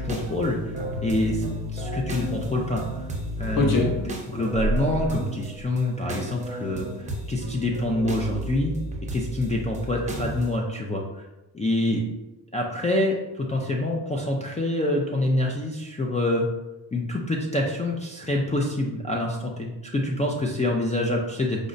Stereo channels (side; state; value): both; normal; correlation 0.52